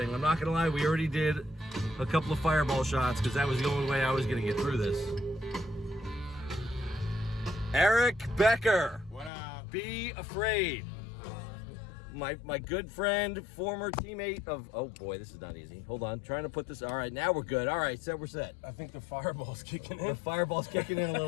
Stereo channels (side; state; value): right; drops out; at 9.3 s